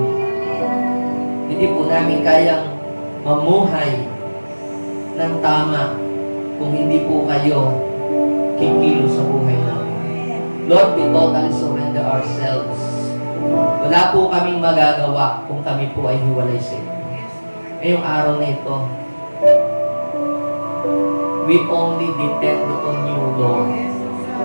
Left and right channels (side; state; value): both; inverted; correlation -1.00